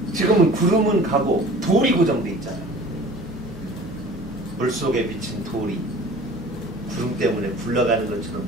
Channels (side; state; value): both; normal; correlation 0.45